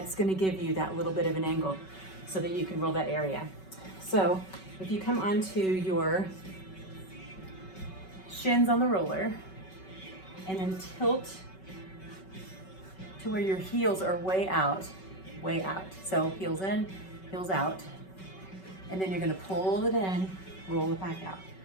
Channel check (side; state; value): right; late; 5.3 ms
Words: gonna give you that little bit of an angle so that you can roll that area. So if you come onto your shins on the roller and then tilt to where your heels are way out, way out. So heels in, heels out. And then you're gonna pull it in, roll it back out.